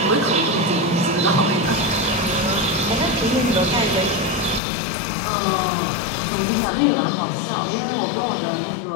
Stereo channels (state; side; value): drops out; right; at 4.6 s